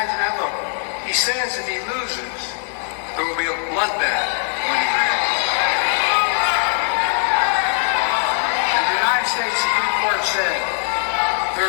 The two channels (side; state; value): right; silent; 55 dB below the other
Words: that? Look, he says if he loses, there will be a bloodbath when he wins. And the United States Supreme Court said there